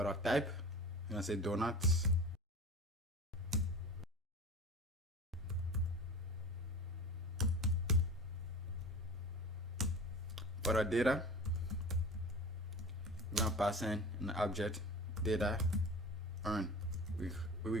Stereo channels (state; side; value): normal; both; correlation 0.36